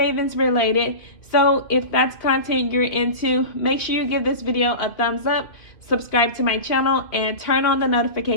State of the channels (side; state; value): right; late; 2.4 ms